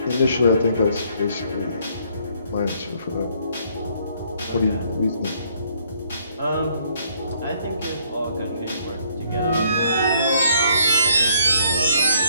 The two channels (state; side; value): inverted; both; correlation -0.66